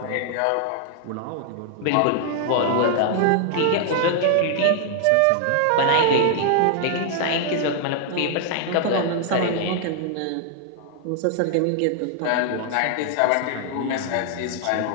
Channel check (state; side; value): different; both; correlation 0.00